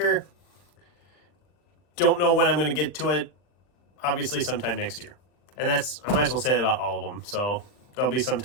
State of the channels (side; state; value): right; late; 40 ms